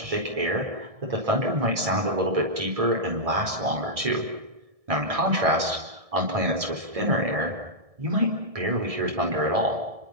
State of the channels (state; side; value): late; left; 1.7 ms